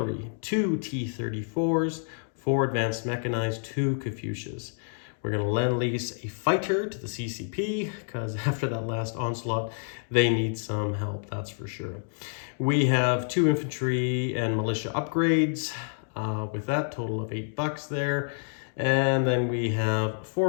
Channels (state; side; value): silent; right; digital silence